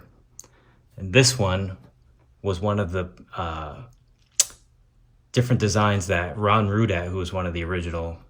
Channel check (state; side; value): identical; both; correlation 1.00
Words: And this one was one of the different designs that Ron Rudat, who was one of the original